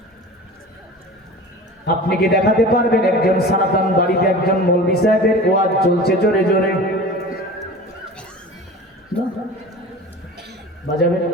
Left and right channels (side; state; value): both; normal; correlation 0.37